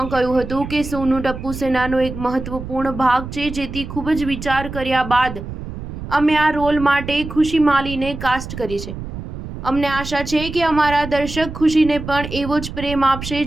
કહ્યું હતું કે સોનુ ટપ્પુ સેનાનો એક મહત્વપૂર્ણ ભાગ છે, જેથી ખૂબ જ વિચાર કર્યા બાદ અમે આ રોલ માટે ખુશી માલીને કાસ્ટ કરી છે। અમને આશા છે કે અમારા દર્શક ખુશીને પણ એવો જ પ્રેમ આપશે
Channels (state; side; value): noise; right; rumble, 9 dB below the sound